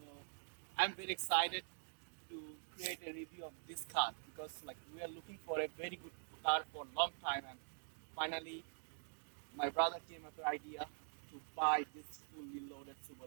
I'm very excited to create a review of this car because like we are looking for a very good car for a long time, and finally my brother came up with the idea to buy this fully loaded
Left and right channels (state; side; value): silent; left; digital silence